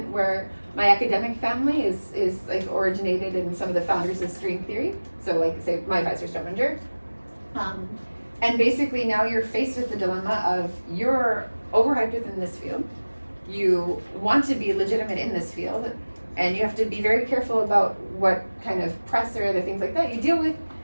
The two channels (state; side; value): inverted; both; correlation -1.00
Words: where my academic family is like originated in some of the founders of string theory. So like say my advisor Strominger. And basically now you're faced with the dilemma of you're overhyped within this field. You want to be legitimate in this field, and you have to be very careful about what kind of press or other things like that you deal with.